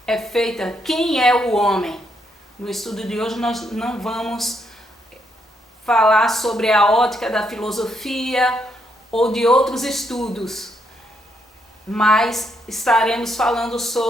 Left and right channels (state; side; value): normal; both; correlation 0.76